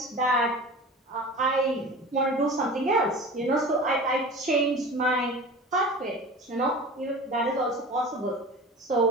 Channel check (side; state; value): both; normal; correlation 0.36